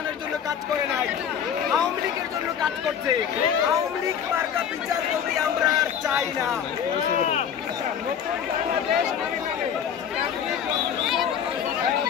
জন্য কাজ করে নাই, আওয়ামী লীগের জন্য কাজ করছে। আওয়ামী লীগ মার্কা বিচারপতি আমরা আর চাই না।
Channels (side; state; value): right; quieter; 8.3 dB